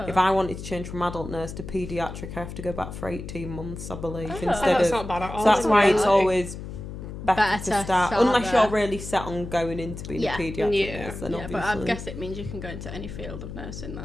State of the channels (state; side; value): noise; left; hum, 9 dB below the sound